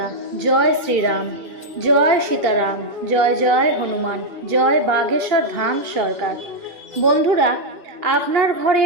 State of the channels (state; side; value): late; left; 2.8 ms